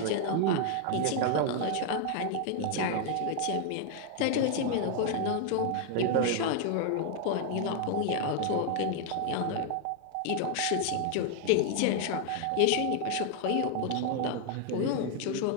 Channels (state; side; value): different; both; correlation 0.00